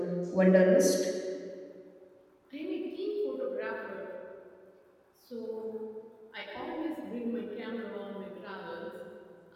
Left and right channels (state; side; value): identical; both; correlation 1.00